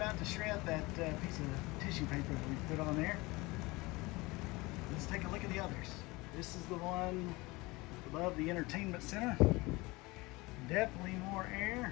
to shred that piece of tissue paper that we put on there. Let's take a look at the others. This is the one above the entertainment center. Definitely more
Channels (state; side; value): quieter; right; 22.9 dB